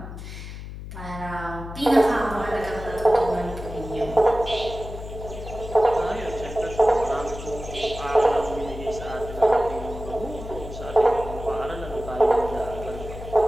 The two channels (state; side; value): noise; left; hum, 10 dB below the sound